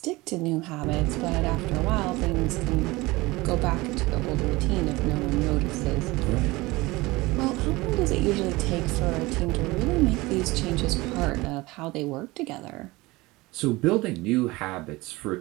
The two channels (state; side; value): quieter; left; 21.4 dB